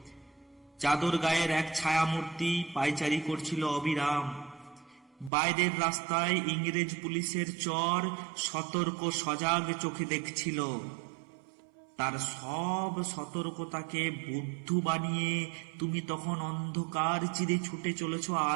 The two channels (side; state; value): left; drops out; at 5.3 s